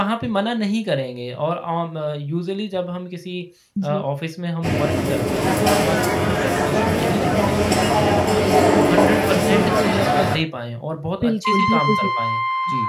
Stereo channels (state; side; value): identical; both; correlation 1.00